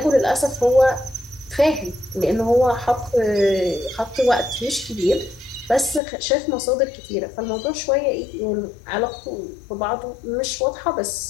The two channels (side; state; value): right; drops out; at 6.0 s